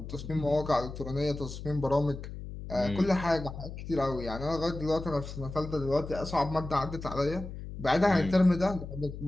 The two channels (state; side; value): noise; left; hum, 10 dB below the sound